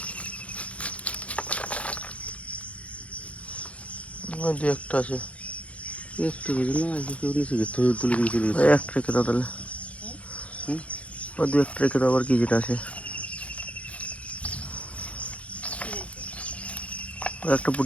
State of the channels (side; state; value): right; late; 0.064 ms